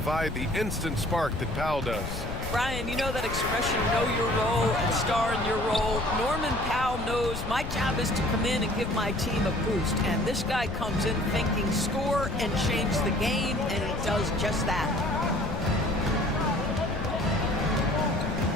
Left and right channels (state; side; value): noise; left; rumble, 6 dB below the sound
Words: the instant spark that Powell does. Brian, you know that expression, know your role and star in your role. Norman Powell knows my job is to come in and give my team a boost. And this guy comes in thinking score and change the game, and he does just that.